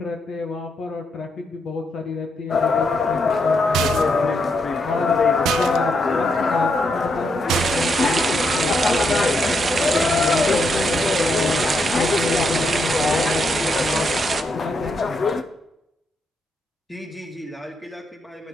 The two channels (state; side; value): normal; both; correlation 0.79